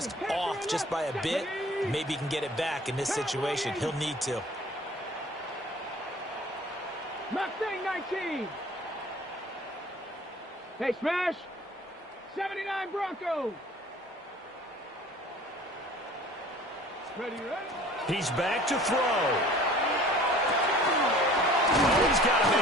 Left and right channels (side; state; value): both; normal; correlation 0.48